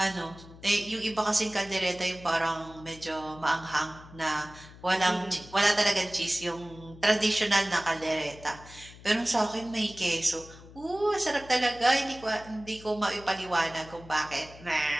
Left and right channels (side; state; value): left; noise; hum, 19 dB below the sound